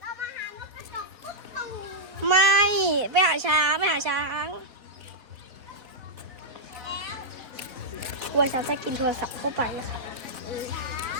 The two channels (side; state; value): left; late; 4.0 ms